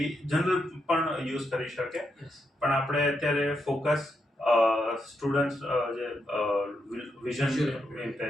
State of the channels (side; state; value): both; normal; correlation 0.82